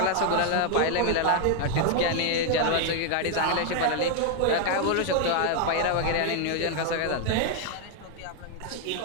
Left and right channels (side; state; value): both; different; correlation 0.01